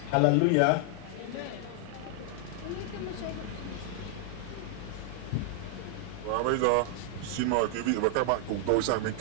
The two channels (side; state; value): both; different; correlation 0.00